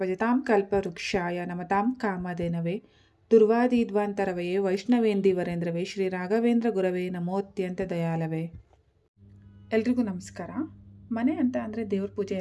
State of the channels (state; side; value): identical; both; correlation 1.00